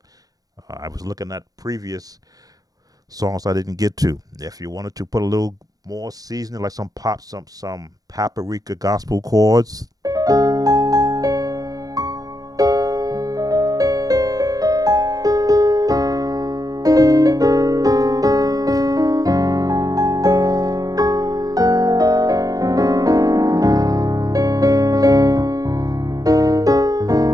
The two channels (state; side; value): late; left; 0.18 ms